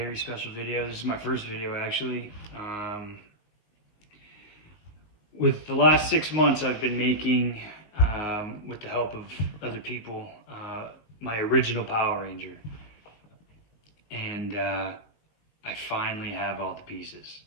special video. This is my first video actually. With the last 6 months I've been making, with the help of other people, my original Power Ranger. And I finally have all the pieces.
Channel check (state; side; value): late; right; 19 ms